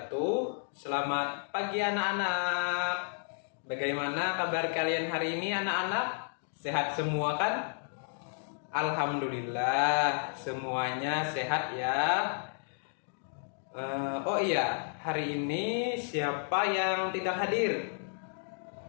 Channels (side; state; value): right; silent; digital silence